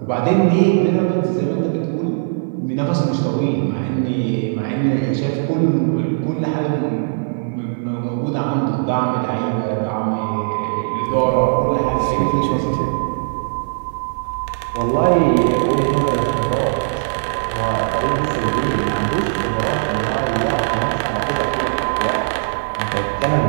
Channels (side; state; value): left; silent; 56 dB below the other